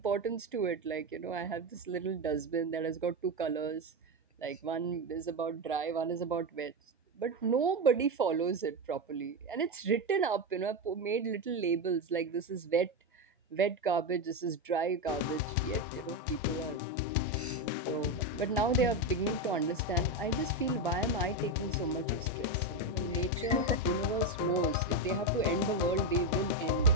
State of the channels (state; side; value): normal; both; correlation 0.11